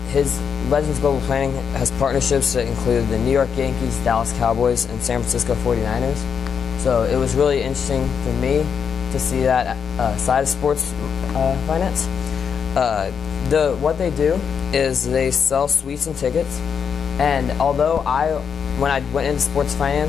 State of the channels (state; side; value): quieter; right; 6.9 dB